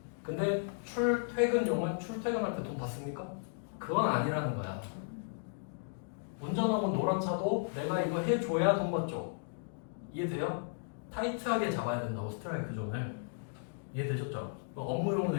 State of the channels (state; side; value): silent; right; digital silence